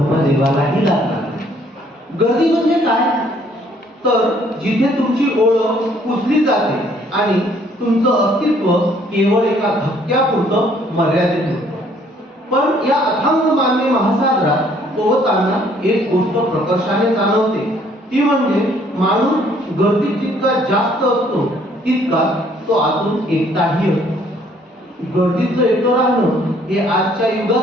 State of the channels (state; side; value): normal; both; correlation 0.62